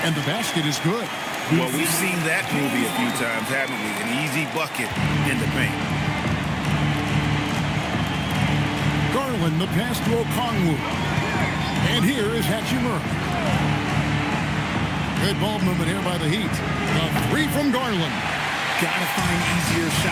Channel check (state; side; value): identical; both; correlation 1.00